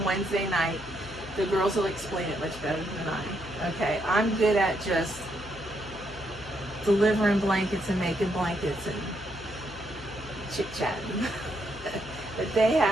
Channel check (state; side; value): noise; left; hum, 16 dB below the sound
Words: Wednesday night. The girls will explain it much better than I. Okay, I'm good at just delivering blankets and making blankets and chit-chatting. But